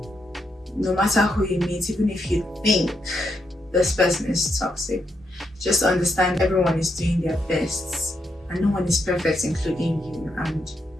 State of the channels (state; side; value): normal; both; correlation 0.81